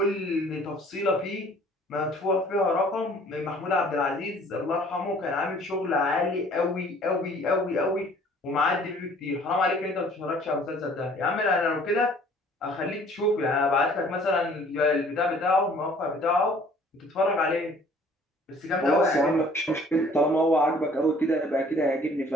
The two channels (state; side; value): normal; both; correlation 0.54